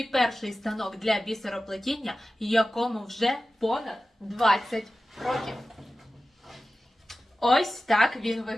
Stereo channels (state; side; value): normal; both; correlation 0.95